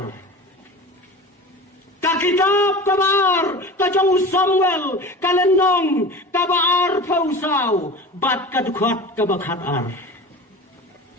ka kitab kabaar kajong Samuel kalenong kabaar pausau bat kadukhat kabakhatar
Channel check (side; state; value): both; normal; correlation 0.34